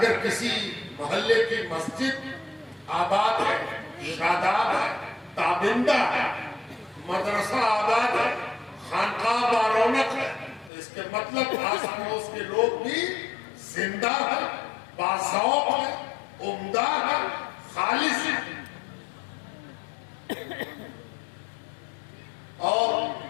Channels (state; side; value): drops out; right; at 10.7 s